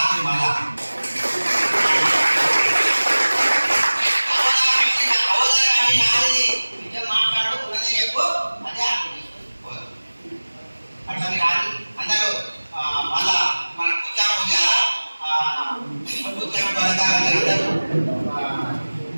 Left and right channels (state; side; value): inverted; both; correlation -1.00